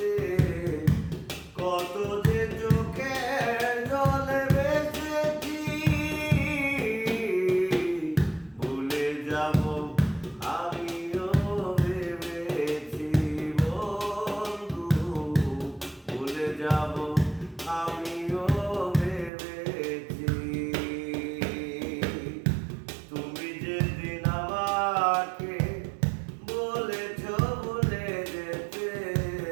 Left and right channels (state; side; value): drops out; left; at 19.3 s